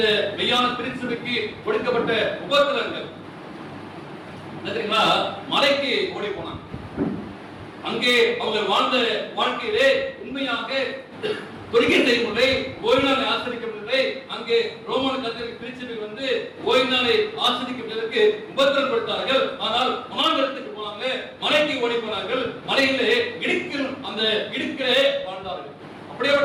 மெய்யான திருச்சபைக்கு கொடுக்கப்பட்ட உபத்திரங்கள் தெரியுங்களா? மலைக்கு ஓடி போனாங்க. அங்கே அவங்க வாழ்ந்த வாழ்க்கையிலே உண்மையாக தொழுகை செய்யவில்லை, ஓய்வு நாளை ஆசிரியக்கவில்லை. அங்கே ரோமன் கத்தோலிக்க திருச்சபை வந்து ஓய்வு நாளை ஆசிரியப்பதற்கு உபத்திரம் கொடுத்தார்கள். ஆனால் வனாந்தரத்துக்கு போனாங்க, மலைக்கு ஓடி போனார்கள். மலையிலே அந்த இடுக்கிலே வாழ்ந்தார்கள்.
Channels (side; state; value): both; identical; correlation 1.00